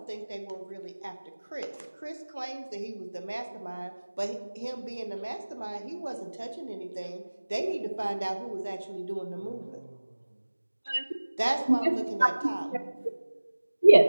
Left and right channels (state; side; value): inverted; both; correlation -1.00